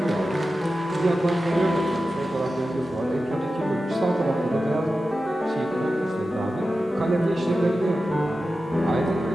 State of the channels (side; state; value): both; normal; correlation 0.93